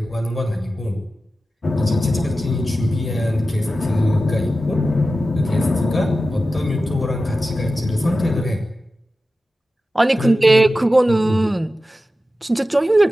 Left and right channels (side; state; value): both; normal; correlation 0.94